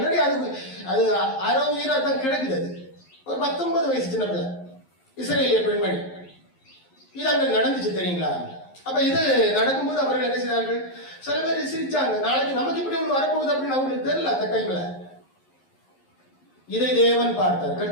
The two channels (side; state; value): right; late; 11 ms